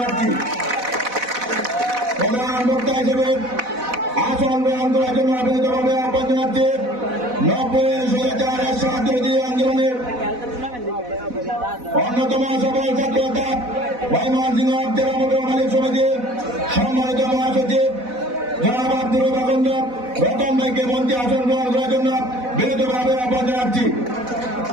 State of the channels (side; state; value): left; late; 4.1 ms